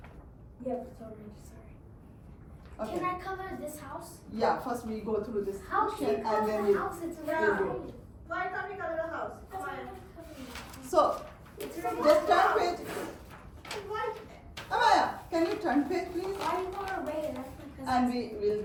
Red. Yep, it's all red. Sorry. Okay. Can I cover this house? Yeah. First we go through this How can you section cover and then the we. house? It's Yeah. red. do. Why can't we color the house? That's Why? why I'm covering it. So It's just red. turn page. Why? Amaya, can you turn page please? Why do you want to red? That's because. And we will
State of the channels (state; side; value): identical; both; correlation 1.00